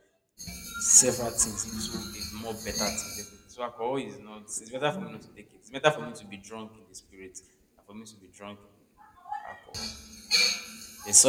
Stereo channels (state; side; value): identical; both; correlation 1.00